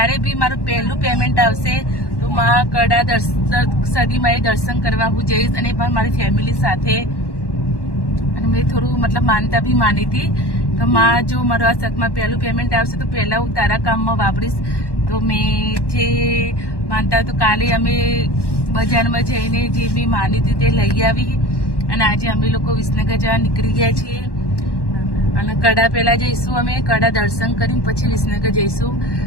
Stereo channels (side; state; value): right; late; 1.1 ms